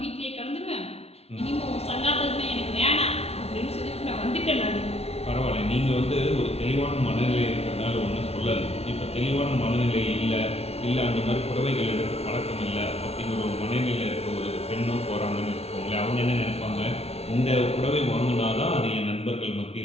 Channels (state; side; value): late; right; 0.30 ms